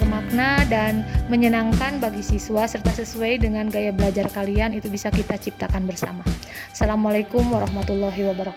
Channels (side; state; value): both; identical; correlation 1.00